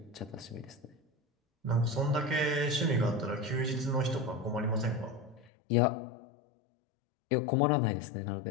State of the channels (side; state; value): right; drops out; at 5.5 s